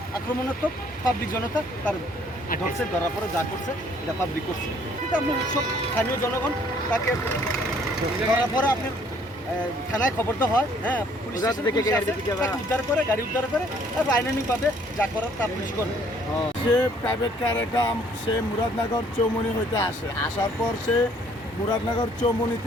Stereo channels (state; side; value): normal; both; correlation 0.61